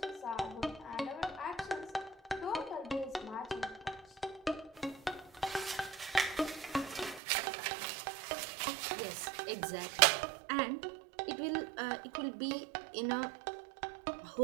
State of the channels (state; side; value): drops out; left; at 7.2 s